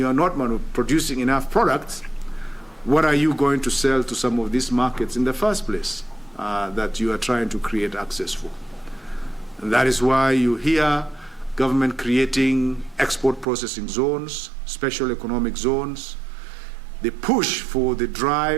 are not producing enough products, what are you going to sell to some of these markets in the first place that you are trying to create access for? And that is why you hear government creating export processing zones, special economic zones. The push for the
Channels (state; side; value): drops out; left; at 13.5 s